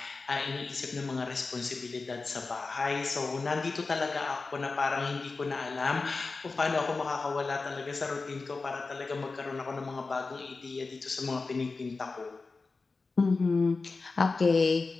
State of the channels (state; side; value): quieter; right; 4.0 dB